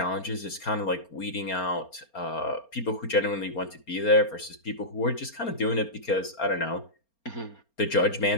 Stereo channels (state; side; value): late; right; 4.3 ms